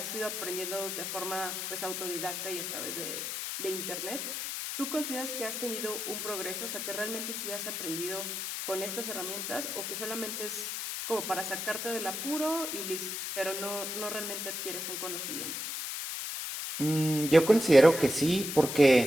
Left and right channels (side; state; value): left; noise; hiss, 4 dB below the sound